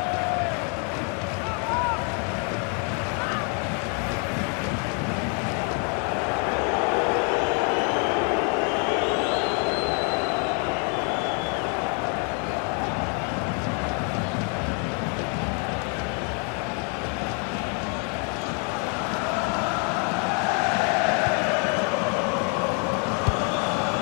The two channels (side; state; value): right; quieter; 38.2 dB